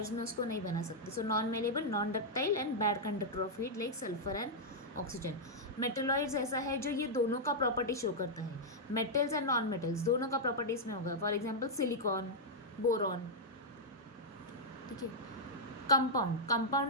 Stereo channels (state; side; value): normal; both; correlation -0.06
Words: में उसको नहीं बना सकते. So non malleable, non ductile and bad conductor of heat like sulphur and oxygen. Metalloids ऐसा है जो ये दोनों का प्रॉपर्टी शो करता है. मेटल्स एंड नॉन मेटल्स दोनों का प्रॉपर्टी इसमें होगा. For example silicon, boron. ठीक है.